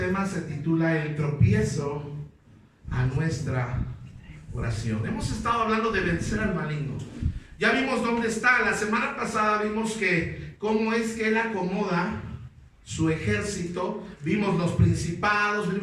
se titula El tropiezo a nuestra oración. Hemos estado hablando de vencer al maligno. Ya vimos dónde está. La semana pasada vimos que cómo es que él acomoda su ejército. Vimos los principados,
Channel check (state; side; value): identical; both; correlation 1.00